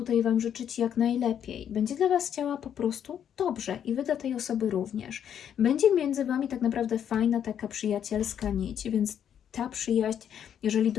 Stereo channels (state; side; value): quieter; right; 9.1 dB